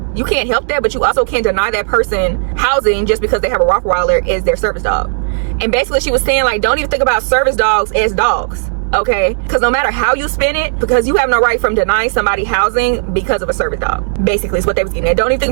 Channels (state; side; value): silent; left; digital silence